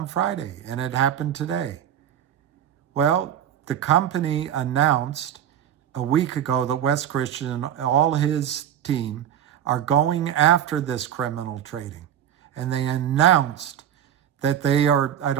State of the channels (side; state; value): left; quieter; 10.2 dB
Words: Friday, and it happened today. Well, the company announced a week ago that Wes Christian and all his team are going after this criminal trading. And they announced that they are, I